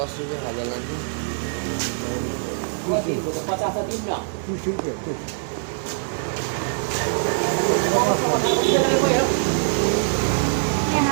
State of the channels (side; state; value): left; silent; digital silence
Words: रुपैयाँ खाजा लाग्ने